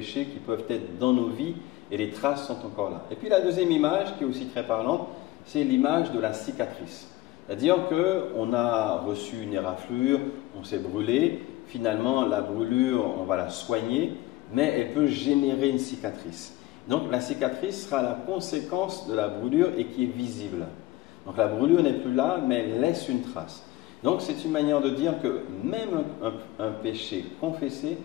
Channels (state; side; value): quieter; right; 17.3 dB